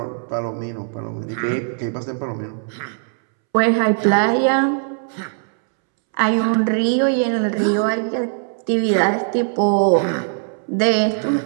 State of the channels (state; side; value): silent; left; 66 dB below the other